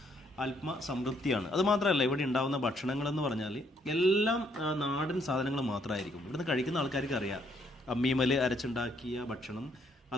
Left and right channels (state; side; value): normal; both; correlation 0.69